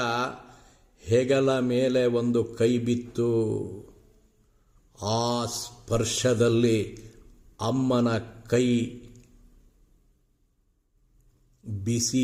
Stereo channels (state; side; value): identical; both; correlation 1.00